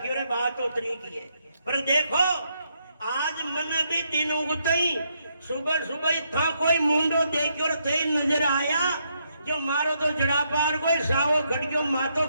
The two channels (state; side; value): inverted; both; correlation -0.76